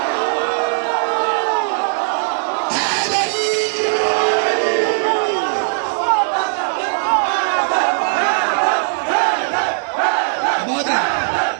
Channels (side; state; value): left; silent; digital silence